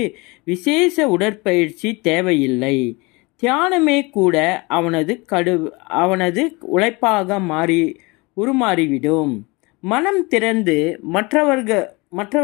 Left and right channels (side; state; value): right; quieter; 25.9 dB